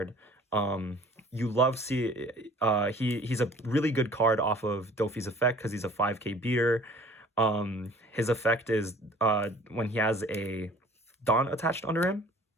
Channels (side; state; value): both; normal; correlation 0.51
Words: You love he's a really good card off of Doffy's effect because he's a 5k beater. His effect is when he has a Dawn attached under him,